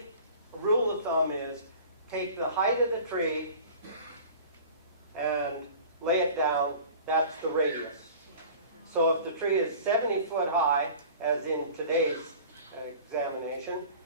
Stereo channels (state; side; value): inverted; both; correlation -0.42